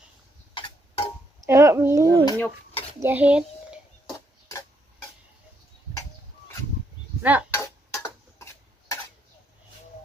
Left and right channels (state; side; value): normal; both; correlation 0.75